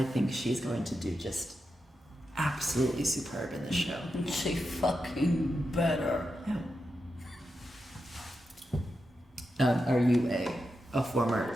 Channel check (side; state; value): both; normal; correlation 0.88